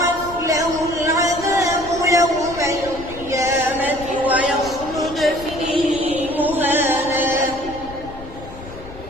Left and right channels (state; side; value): noise; left; rumble, 15 dB below the sound